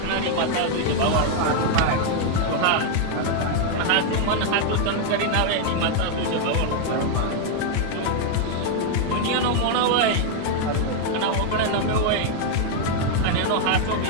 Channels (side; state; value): both; different; correlation 0.00